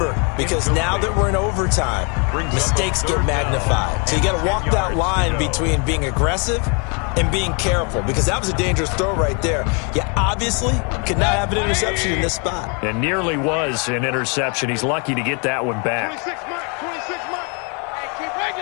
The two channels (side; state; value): right; quieter; 35.3 dB